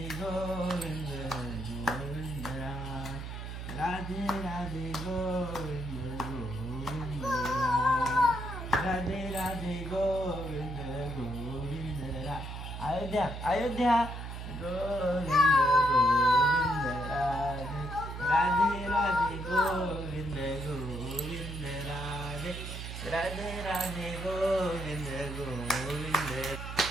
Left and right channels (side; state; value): right; noise; hum, 7 dB below the sound